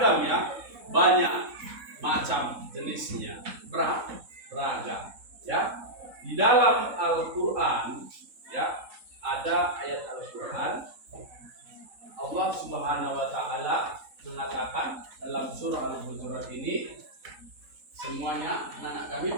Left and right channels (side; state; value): left; late; 3.7 ms